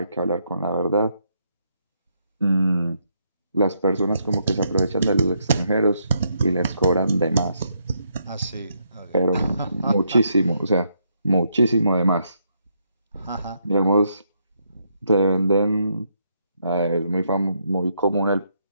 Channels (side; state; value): both; inverted; correlation -0.77